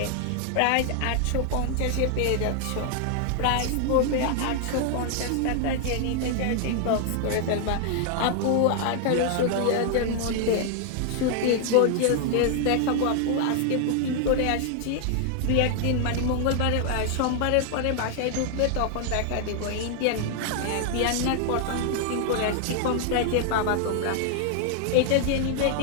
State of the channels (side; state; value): both; different; correlation 0.00